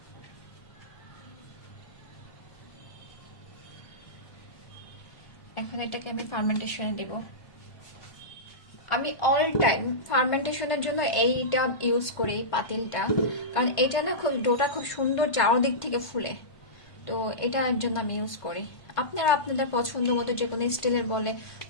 এখন এটাকে আমি ফার্মেন্টেশনে দেব। আমি অল টাইম ফার্মেন্টেশনের জন্য এইটা ইউজ করি, এই পাতিলটা, কারণ এটা না খুব ডোটা খুব সুন্দর চারদিক থেকে ফুলে। তো এটার জন্য আমি ইউজ করি। আপনারা আপনাদের পছন্দ মতো যে কোনো স্টিলের বলে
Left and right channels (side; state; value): right; late; 1.5 ms